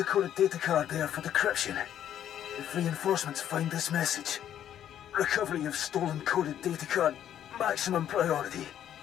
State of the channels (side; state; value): right; quieter; 10.5 dB